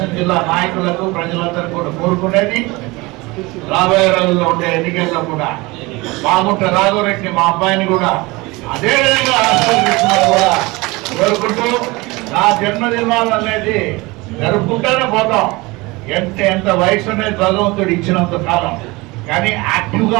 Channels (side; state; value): left; quieter; 23.2 dB